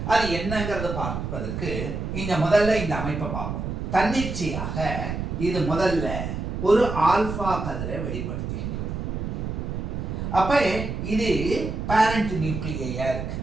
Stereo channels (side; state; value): right; noise; rumble, 4 dB below the sound